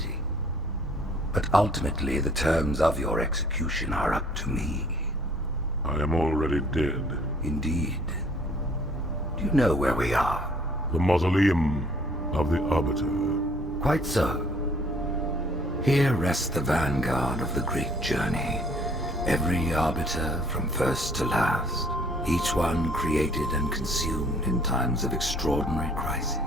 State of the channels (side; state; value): both; normal; correlation 0.58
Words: But ultimately, the terms of your execution are up to me. I am already dead. Indeed. Do you know where we are? The mausoleum of the Arbiter. Quite so. Here rests the vanguard of the great journey. Every Arbiter from first to last. Each one created and consumed in times of extraordinary